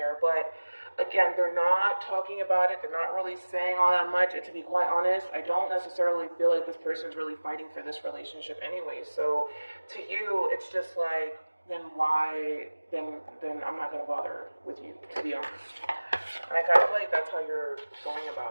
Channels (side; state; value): both; inverted; correlation -1.00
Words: But again, they're not talking about it. They're not really saying all that much. And to be quite honest, I don't necessarily feel like this person's really fighting for this relationship anyway. So to you, it's just like, then why, then I'm not going to bother with you, to be honest. And I kind of feel like that's how you're going